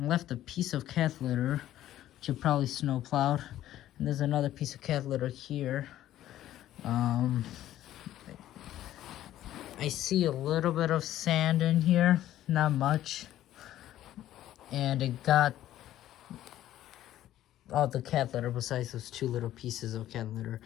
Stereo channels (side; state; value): right; quieter; 13.1 dB